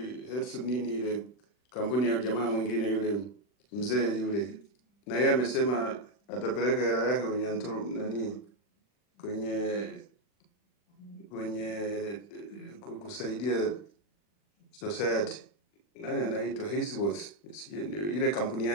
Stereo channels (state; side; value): late; right; 40 ms